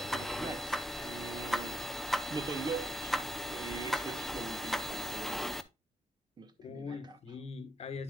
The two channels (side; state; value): both; normal; correlation 0.79